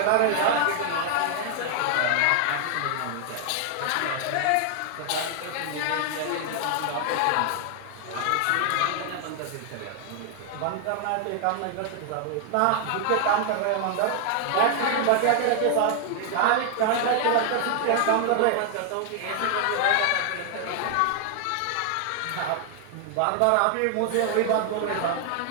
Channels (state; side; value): different; both; correlation 0.00